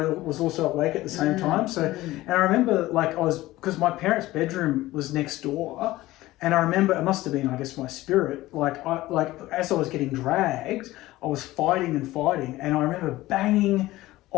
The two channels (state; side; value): quieter; right; 17.3 dB